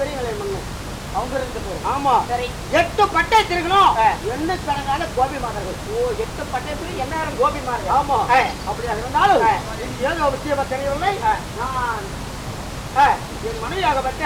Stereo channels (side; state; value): both; identical; correlation 1.00